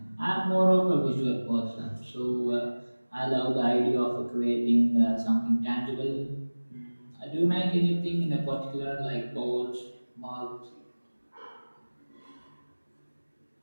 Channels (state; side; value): inverted; both; correlation -1.00